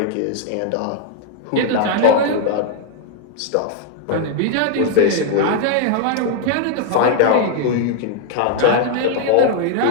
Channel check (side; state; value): both; different; correlation 0.00